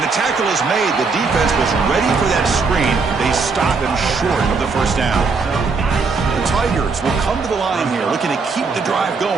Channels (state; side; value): quieter; left; 4.5 dB